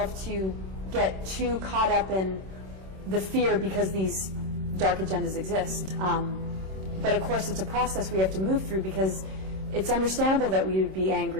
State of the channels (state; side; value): late; left; 26 ms